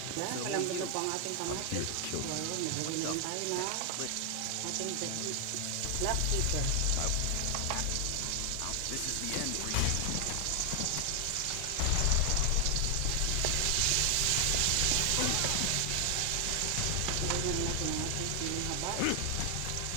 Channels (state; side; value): different; both; correlation 0.00